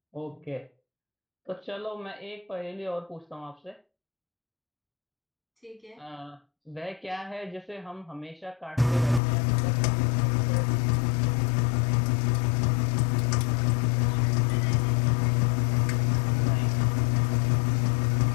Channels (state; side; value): drops out; right; at 9.2 s